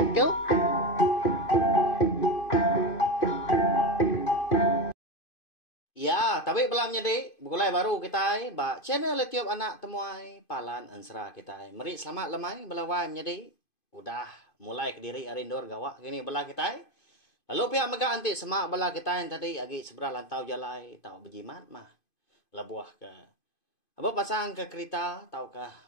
Ya, tapi belum jadi. Mulai baru kita ba channel YouTube anak temuai Palan Ansra kita. Mari selamat lemai belawai jadi. Udah mulai ke diri arindor gawak gini belah kita. Lalu pihak mega anti semak belah kita yang tadi agi seberang lantau jalai tau berjimat mah. Labuah ke. Apa pasang ke kereta tau kah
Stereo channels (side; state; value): right; late; 2.5 ms